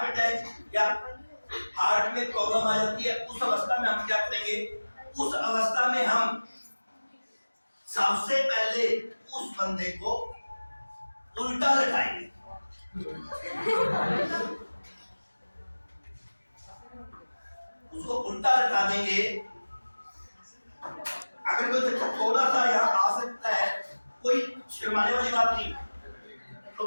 अटैक या हार्ट में प्रॉब्लम आ जाती है, उस अवस्था में हम क्या करेंगे? उस अवस्था में हम सबसे पहले उस बंदे को उल्टा लटाएंगे। उसको उल्टा लटा देंगे। अगर कोई बच्चा थोड़ा सा यहाँ आ सकता है, कोई शर्माने वाली बात नहीं, तो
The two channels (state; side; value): inverted; both; correlation -1.00